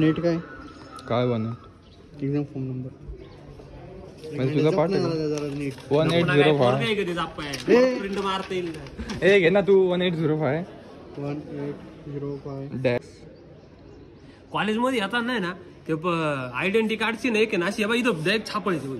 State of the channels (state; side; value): identical; both; correlation 1.00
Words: काय बन एक्झाम फॉर्म नंबर म्हणजे तुझा पाठ आहे जरा नीट 1805. प्रिंट मारता येईल ए घे ना तू 1805 1805 कॉलेजमध्ये येतात नाही ना ते आयडेंटिटी कार्डची नाही की ना अशी इथं डायरेक्ट छापायची होई